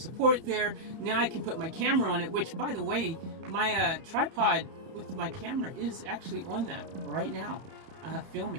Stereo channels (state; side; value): late; left; 30 ms